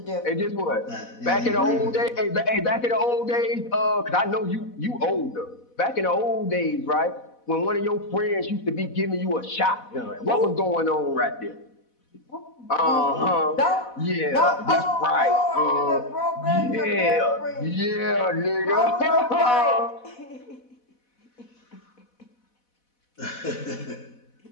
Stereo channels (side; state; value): right; late; 4.1 ms